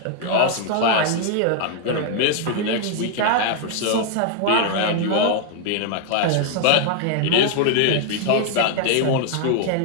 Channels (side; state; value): both; different; correlation 0.00